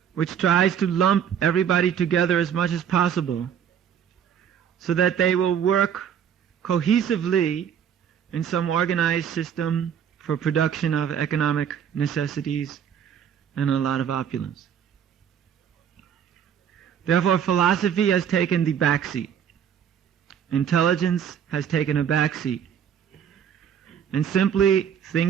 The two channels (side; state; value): left; quieter; 8.5 dB